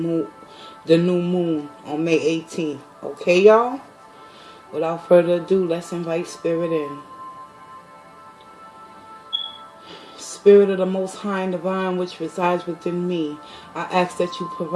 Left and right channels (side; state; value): both; identical; correlation 1.00